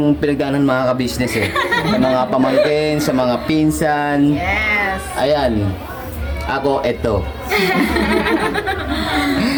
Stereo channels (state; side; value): identical; both; correlation 1.00